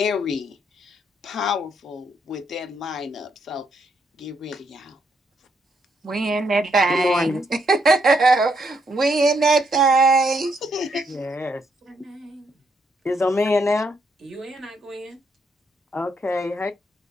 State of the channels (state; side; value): normal; both; correlation 0.75